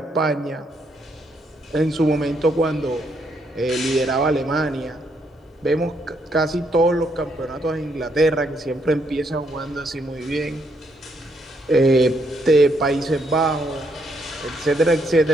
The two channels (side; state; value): both; normal; correlation 0.74